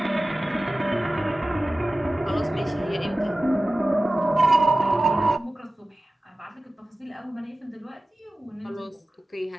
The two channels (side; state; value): both; normal; correlation 0.96